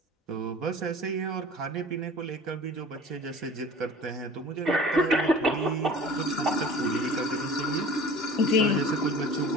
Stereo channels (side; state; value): both; normal; correlation 0.43